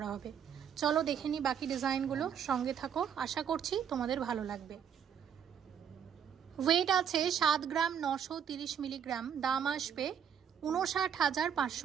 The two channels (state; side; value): quieter; left; 8.2 dB